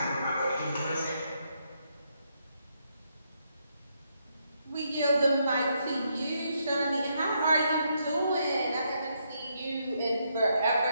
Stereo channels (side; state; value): both; inverted; correlation -0.77